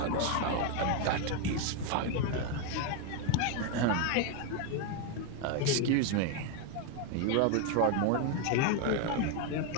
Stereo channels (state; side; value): different; both; correlation 0.01